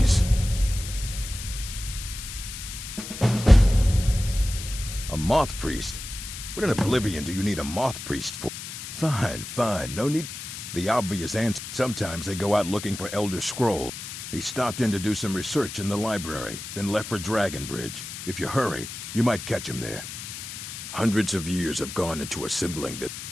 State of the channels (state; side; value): noise; left; hiss, 9 dB below the sound